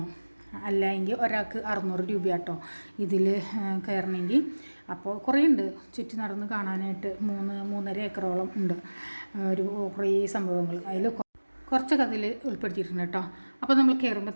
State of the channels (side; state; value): both; inverted; correlation -1.00